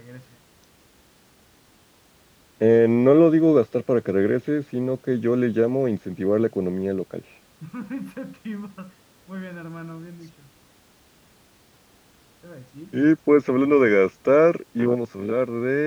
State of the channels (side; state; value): both; identical; correlation 1.00